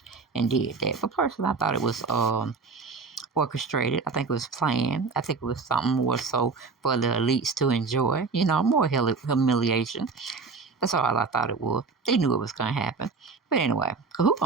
and did that. But personally, I thought it was orchestrated. I think it was planned. I think it was something more so for the elites to enjoy. You know, more humiliation. That's all I thought it was. They knew it was going to happen. But anyway, who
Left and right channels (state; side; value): quieter; left; 4.6 dB